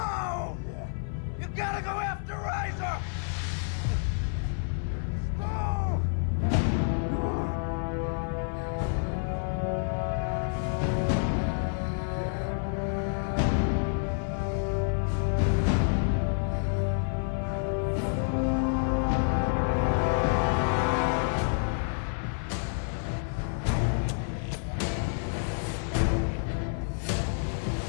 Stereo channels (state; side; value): silent; right; 55 dB below the other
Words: You gotta go after Riser! No!